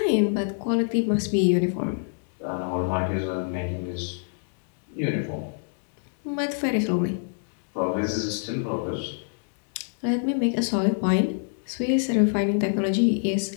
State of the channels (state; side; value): silent; right; digital silence